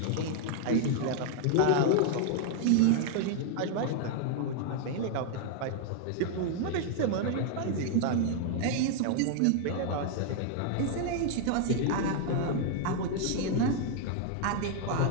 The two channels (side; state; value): both; different; correlation 0.00